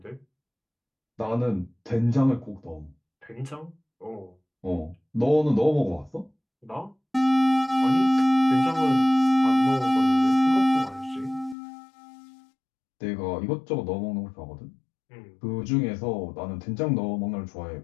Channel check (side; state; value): right; drops out; at 11.6 s